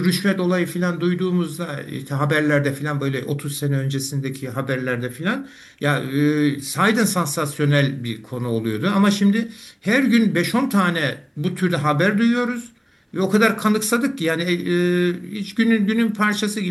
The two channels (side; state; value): both; identical; correlation 1.00